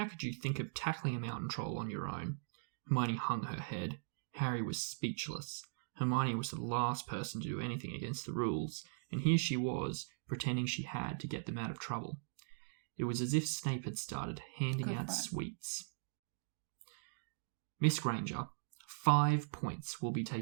could you think of tackling a mountain troll on your own? Hermione hung her head. Harry was speechless. Hermione was the last person to do anything against the rules, and here she was, pretending she had to get them out of trouble. It was as if Snape had started handing out sweets. Miss Granger, 5 points will be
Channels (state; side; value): silent; left; digital silence